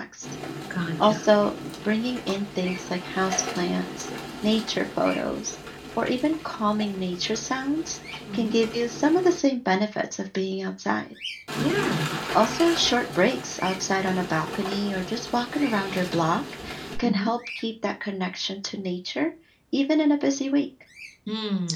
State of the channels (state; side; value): identical; both; correlation 1.00